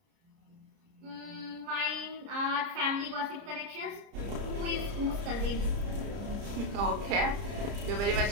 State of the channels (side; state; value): left; late; 30 ms